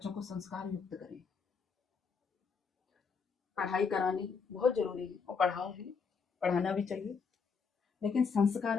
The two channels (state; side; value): quieter; right; 5.5 dB